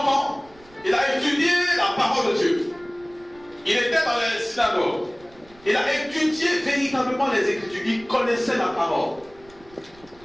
ans, il a étudié la parole de Dieu. Il était dans les synagogues. Il a étudié véritablement les Écritures. Il connaissait la parole.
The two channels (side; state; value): right; noise; rumble, 26 dB below the sound